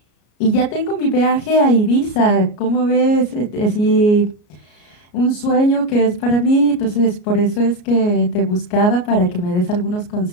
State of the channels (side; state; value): right; late; 33 ms